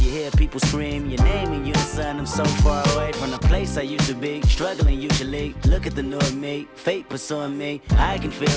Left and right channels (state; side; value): identical; both; correlation 1.00